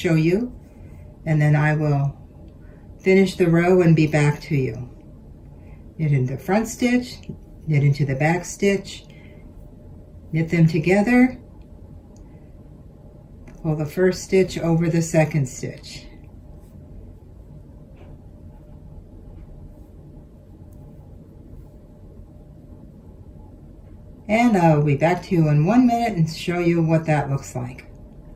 you, and then I will finish the row and be back to you. Knit into the front stitch, knit into the back stitch, knit them together, pull the first stitch over the second stitch. And I'll be back to you in 1 minute and show you what that looks like.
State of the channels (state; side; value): identical; both; correlation 1.00